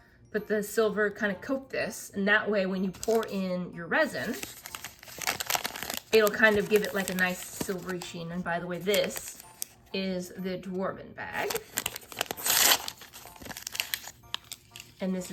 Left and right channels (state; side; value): identical; both; correlation 1.00